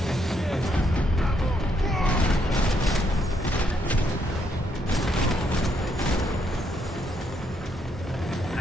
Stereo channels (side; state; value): both; normal; correlation 0.75